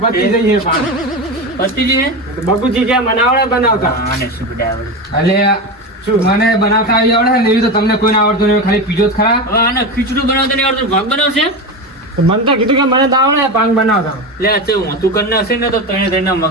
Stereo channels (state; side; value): normal; both; correlation 0.20